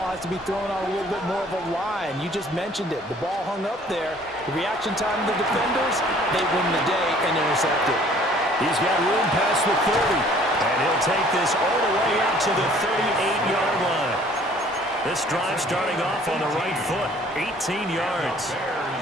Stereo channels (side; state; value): both; normal; correlation 0.55